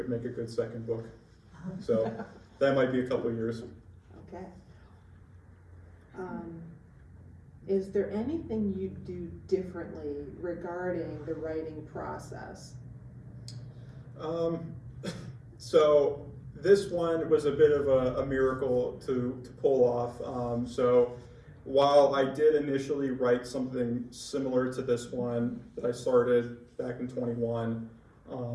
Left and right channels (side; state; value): both; identical; correlation 1.00